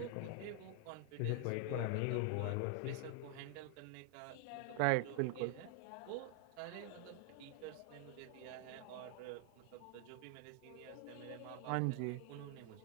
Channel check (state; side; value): different; both; correlation 0.00